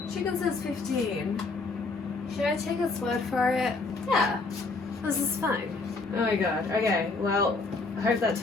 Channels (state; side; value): quieter; right; 3.8 dB